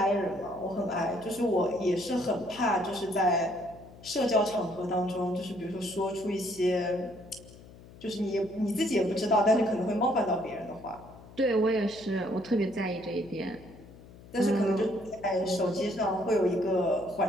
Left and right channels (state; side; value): noise; left; hum, 20 dB below the sound